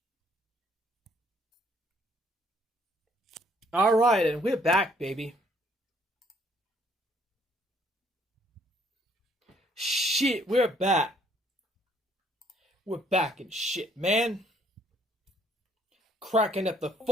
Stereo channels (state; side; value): normal; both; correlation 0.65